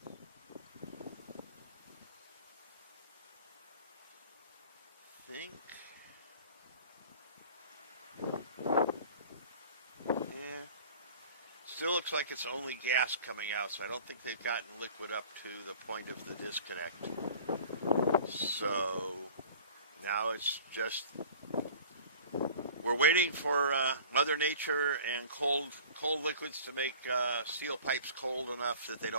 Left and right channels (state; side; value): inverted; both; correlation -0.44